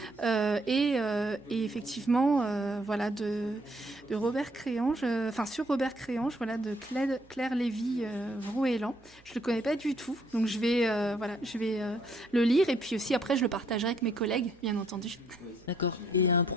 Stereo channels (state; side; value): noise; right; hum, 28 dB below the sound